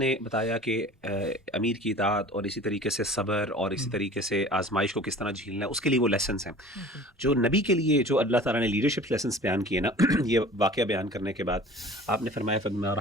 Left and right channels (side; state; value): both; normal; correlation 0.44